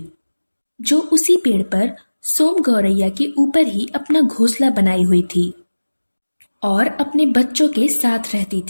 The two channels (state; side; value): inverted; both; correlation -1.00